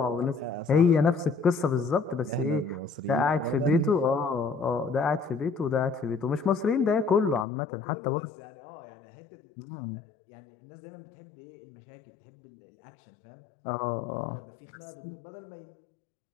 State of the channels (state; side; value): drops out; right; at 7.5 s